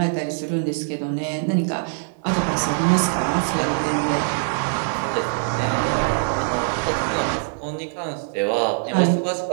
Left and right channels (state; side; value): silent; left; digital silence